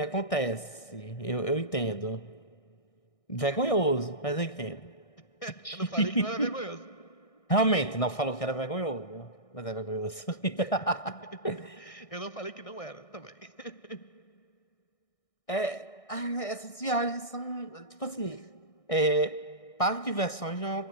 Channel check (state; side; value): late; right; 1.6 ms